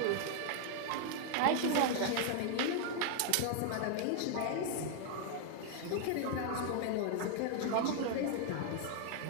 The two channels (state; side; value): different; both; correlation 0.00